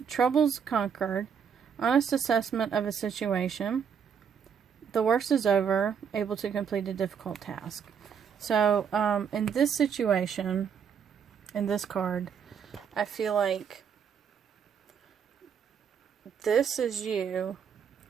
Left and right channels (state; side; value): quieter; left; 7.2 dB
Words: troubles conquered, honest assessment of a situation, the worst is over, able to complete a difficult task. So, in this situation, in this card, I feel like this is you